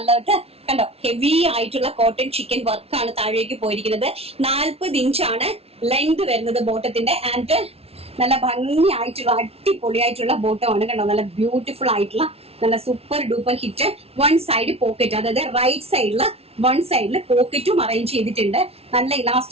കണ്ടോ, ഹെവി ആയിട്ടുള്ള കോട്ടൺ ചിക്കൻ വർക്കാണ് താഴേക്ക് പോയിരിക്കുന്നത്. 40 ഇഞ്ചാണ് ലെങ്ത് വരുന്നത് ബോട്ടത്തിന്റെ. ആൻഡ് നല്ല ഭംഗിയായിട്ടുള്ള അടിപൊളിയായിട്ടുള്ള ബോട്ടമാണ് കണ്ടോ, നല്ല ബ്യൂട്ടിഫുൾ ആയിട്ടുള്ള നല്ല super duper hit. One side pocket, അതായത് റൈറ്റ് സൈഡില് വൺ സൈഡിൽ പോക്കറ്റും അറേഞ്ച് ചെയ്തിട്ടുണ്ട്. നല്ല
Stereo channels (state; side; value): late; left; 0.29 ms